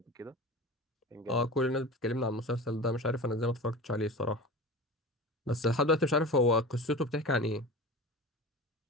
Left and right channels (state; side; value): normal; both; correlation 0.33